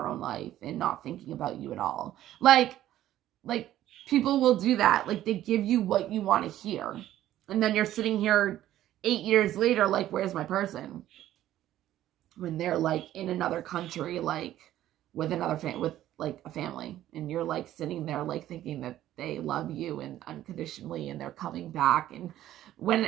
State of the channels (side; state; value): left; quieter; 13.1 dB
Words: own life and not thinking about you at all. Like people will do that. They give you what you want to hear. And then you're sitting here 8 years later, where's my person? When they're in another country, with another with a family, and you're sitting there thinking that they love you and unconditionally and they're coming back, and when